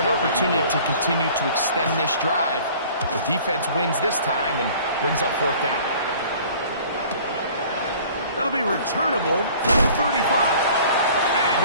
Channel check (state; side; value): inverted; both; correlation -0.49